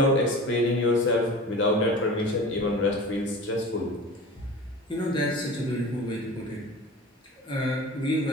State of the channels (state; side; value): normal; both; correlation 0.36